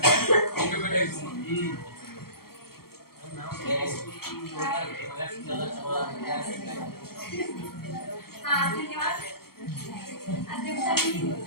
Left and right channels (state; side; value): late; right; 0.94 ms